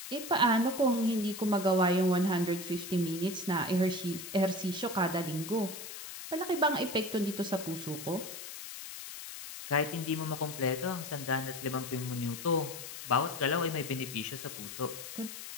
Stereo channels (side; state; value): left; noise; hiss, 10 dB below the sound